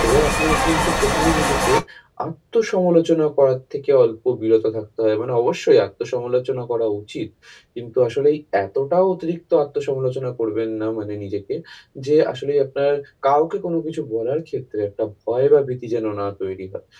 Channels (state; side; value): identical; both; correlation 1.00